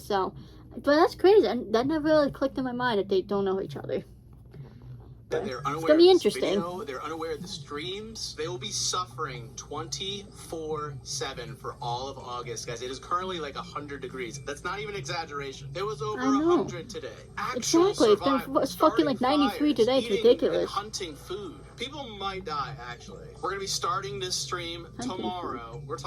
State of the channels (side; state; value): both; identical; correlation 1.00